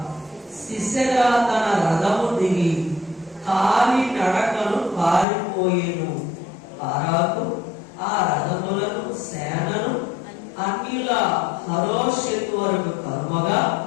సిసెరా తన రథము దిగి కాలి నడకను పారిపోయేను. బారాకు ఆ రథములను సేనను అన్నిల హరోషెతు వరకు కర్మగా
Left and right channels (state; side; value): drops out; right; at 5.2 s